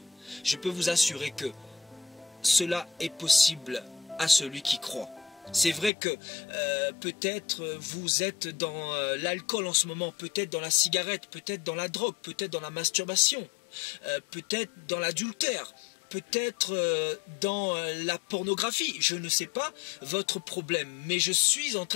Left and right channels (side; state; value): right; drops out; at 5.9 s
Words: Je peux vous assurer que cela est possible à celui qui croit. C'est vrai que peut-être vous êtes dans l'alcool en ce moment, peut-être dans la cigarette, peut-être dans la drogue, peut-être dans la masturbation, peut-être dans l'adultère, peut-être dans la pornographie, je ne sais pas votre problème, mais je suis en